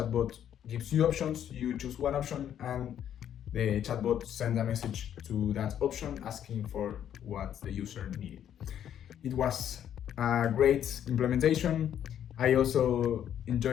gives you options. You choose one option and the chatbot sends a message to that option asking for what the user needed. It was a great implementation. I also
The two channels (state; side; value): quieter; right; 9.9 dB